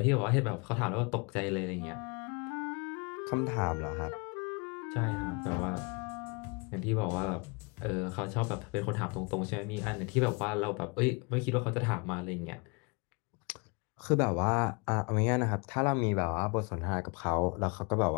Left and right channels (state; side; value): quieter; right; 31.2 dB